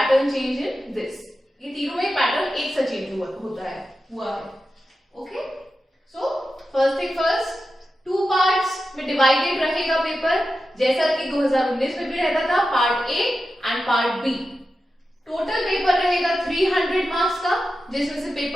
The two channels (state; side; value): normal; both; correlation 0.92